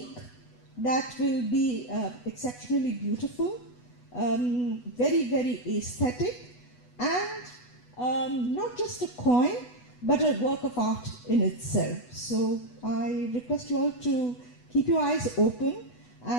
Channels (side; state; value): right; late; 8.1 ms